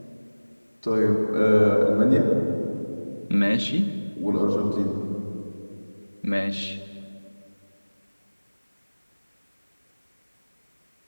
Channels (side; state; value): both; inverted; correlation -1.00